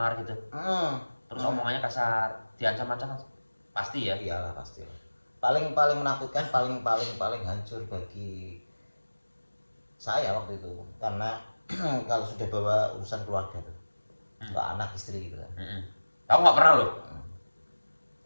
gitu. Terus omongannya kasar, diancam-ancam pasti ya? Iyalah pasti. Paling menakutkan, paling hancur bagi saya waktu itu karena kalau sudah bawa urusan keluarga tuh, anak istri gitu kan. Aku nggak pernah loh.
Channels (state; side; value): inverted; both; correlation -1.00